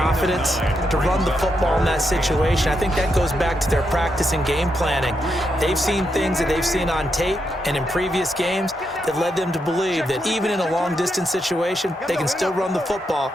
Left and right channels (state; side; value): normal; both; correlation 0.82